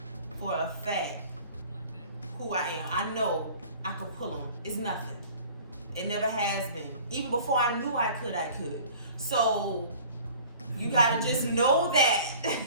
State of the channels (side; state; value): both; inverted; correlation -0.47